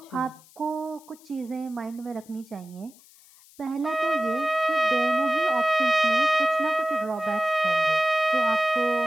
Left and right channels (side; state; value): left; noise; hiss, 26 dB below the sound